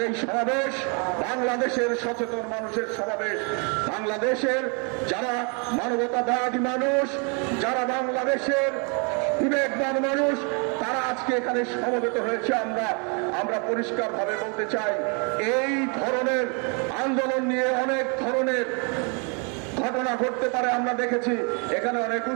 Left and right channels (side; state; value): left; quieter; 35.9 dB